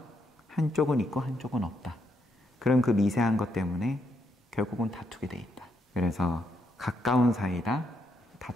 한쪽은 있고 한쪽은 없다. 그럼 그 미세한 것 때문에 결국은 다투게 돼 있다. 그래서 가까운 사이다,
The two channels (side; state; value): both; normal; correlation 0.77